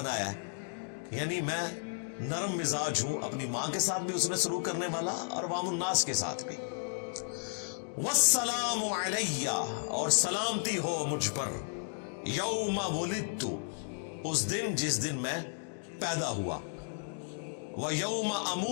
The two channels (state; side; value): silent; right; digital silence